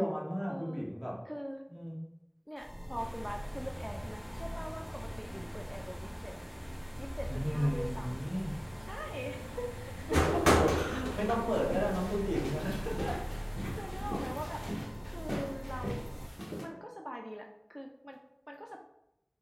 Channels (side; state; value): both; identical; correlation 1.00